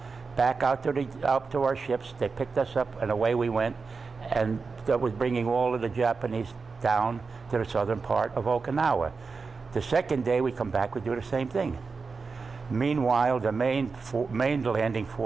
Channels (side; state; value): left; quieter; 4.7 dB